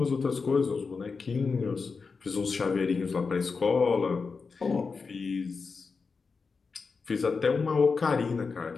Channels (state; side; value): quieter; right; 4.8 dB